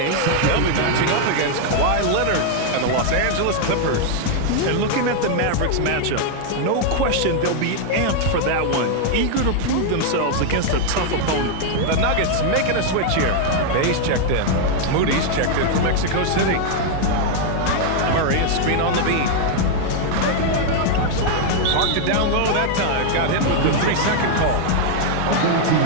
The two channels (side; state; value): both; different; correlation 0.00